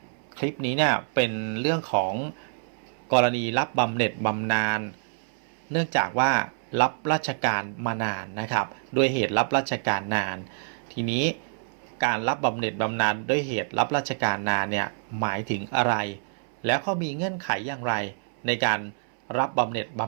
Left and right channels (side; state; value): left; silent; 60 dB below the other